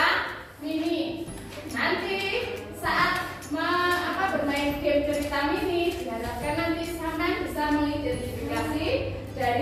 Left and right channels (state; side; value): identical; both; correlation 1.00